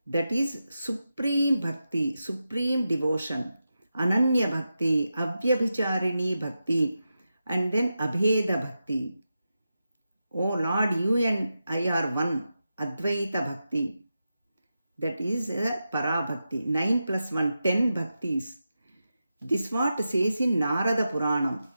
That is supreme bhakti, supreme devotion. Ananya bhakti, Avyabhicharini bhakti, and then Abheda bhakti. Oh Lord, you and I are one. Advaita bhakti. That is Para bhakti. 9 plus 1, 10 bhaktis. This what says in Narada Purana.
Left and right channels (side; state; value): both; inverted; correlation -0.90